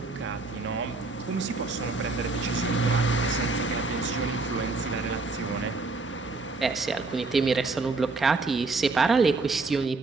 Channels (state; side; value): quieter; left; 3.7 dB